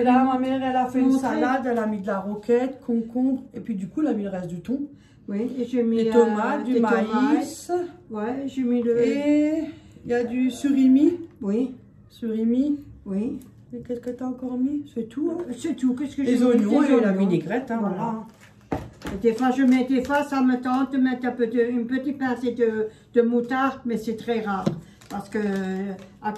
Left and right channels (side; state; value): both; identical; correlation 1.00